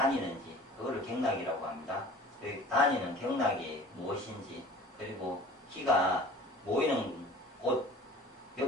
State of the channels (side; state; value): both; normal; correlation 0.44